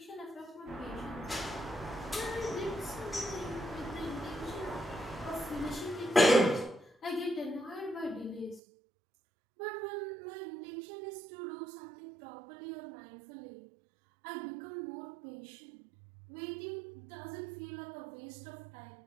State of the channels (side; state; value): left; drops out; at 8.6 s